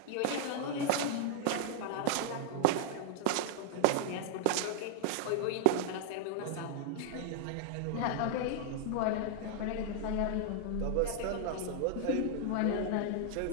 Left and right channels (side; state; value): both; different; correlation 0.00